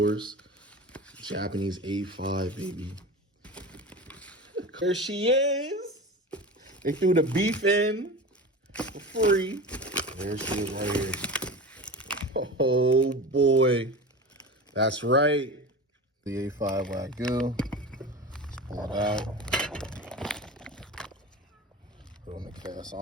Japanese A5, baby. There she is. They threw the beef in for free. There she is right here. Oh boy. That's right. The A5 Wagyu. Let's pull it out. Put it on the cast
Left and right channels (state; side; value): normal; both; correlation 0.30